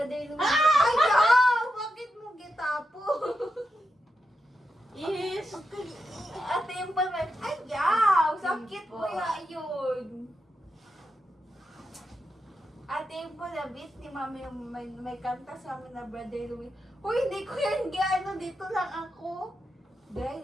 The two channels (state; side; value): normal; both; correlation 0.86